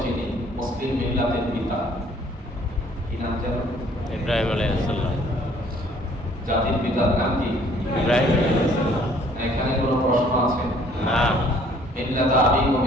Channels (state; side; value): normal; both; correlation 0.58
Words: চিনি মুসলিম মিল্লাতের পিতা, কি নাম যেন? ইব্রাহিম আলাইহিস সালাম। জাতির পিতার নাম কি? ইব্রাহিম আলাইহিস সালাম। এখানে কোনো প্রশ্ন আছে? না। মিল্লাত আবিকুম